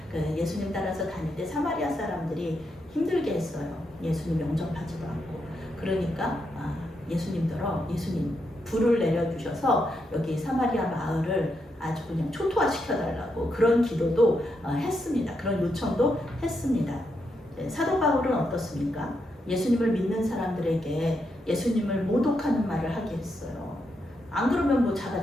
예수님 따라서 다닐 때 사마리아 사람들이 힘들게 했어요. 예수님 영접하지도 않고. 그러니까 예수님 불을 내려주셔서 여기 사마리아 마을을 아주 그냥 초토화시켜달라고 그런 기도도 했습니다. 그런 요청도 했습니다. 사도 바울은 어떻습니까? 예수님을 믿는 사람들에게 예수님을 모독하는 말을 하게 했어요. 안 그러면 뭐 잡아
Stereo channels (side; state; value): both; normal; correlation 0.82